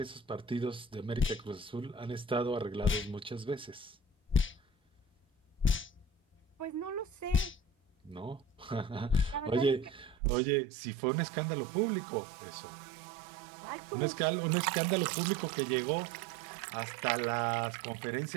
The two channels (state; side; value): drops out; left; at 10.2 s